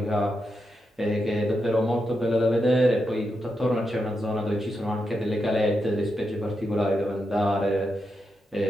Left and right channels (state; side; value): normal; both; correlation 0.85